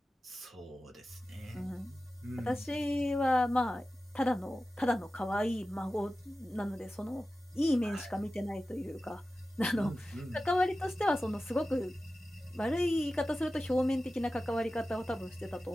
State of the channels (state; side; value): normal; both; correlation 0.95